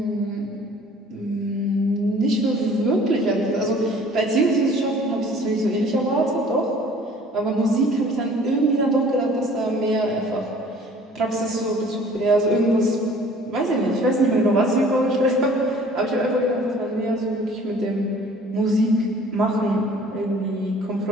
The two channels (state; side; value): normal; both; correlation 0.51